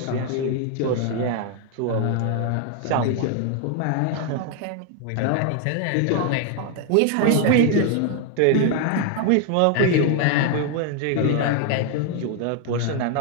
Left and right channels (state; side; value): different; both; correlation 0.01